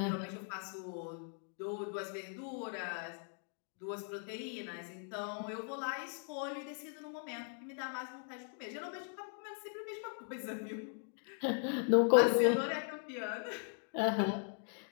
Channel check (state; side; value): silent; right; 52 dB below the other